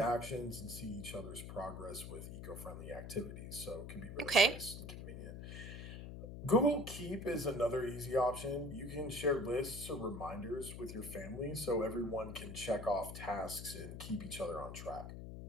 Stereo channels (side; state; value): left; noise; hum, 9 dB below the sound